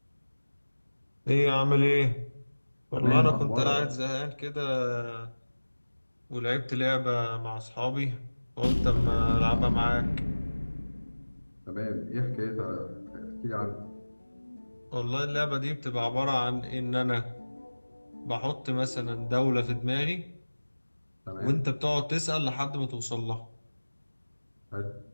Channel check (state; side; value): inverted; both; correlation -1.00